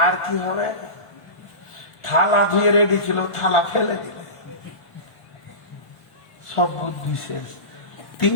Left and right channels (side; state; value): right; late; 1.5 ms